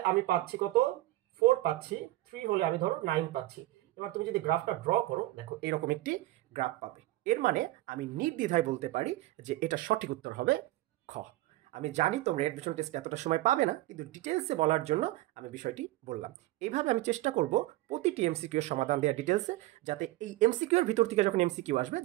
আমি পাচ্ছি কত? 4 পাচ্ছি, 3 হলে আমি ধরো 9 পাচ্ছি। এবার তুমি যদি গ্রাফটা ড্র করো, দেখো এরকম একটি গ্রাফ পাবে। এর মানে আমি নির্দ্বিধায় বলতে পারি যে এটা সঠিক উত্তর হবে খ। আমি জানি তোমরা অ্যাডমিশন টেস্টে এতটা সময় পাবে না, কিন্তু ডিটেলসে বলার জন্য আমি বিষয়টি বললাম। এইভাবে আমি চেষ্টা করব প্রতিটি এমসিকিউ এর সমাধান দেওয়ার ডিটেলসে, যাতে এই এমসিকিউ এর ভিতর থেকে যখন এমসিকিউ আসবে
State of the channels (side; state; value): left; quieter; 17.2 dB